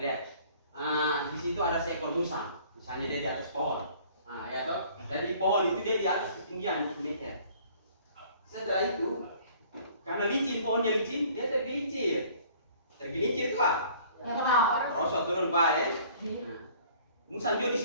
Di situ ada seekor musang. Misalnya dia di atas pohon. Ya toh. Dari pohon itu dia di atas ketinggian 20 meter. Setelah itu, karena licin, pohonnya licin, dia tergelincir. Tergelincir itu apa? Rosot turun bawah ya. Musang juga di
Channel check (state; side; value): inverted; both; correlation -0.54